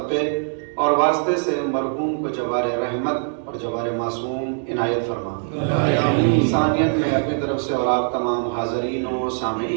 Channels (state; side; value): silent; left; digital silence